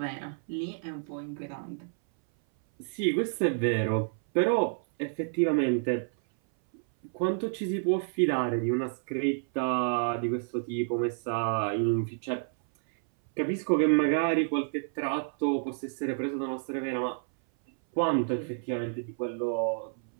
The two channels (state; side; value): silent; left; 58 dB below the other